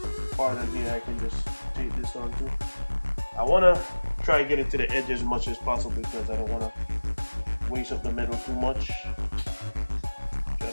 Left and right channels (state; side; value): inverted; both; correlation -1.00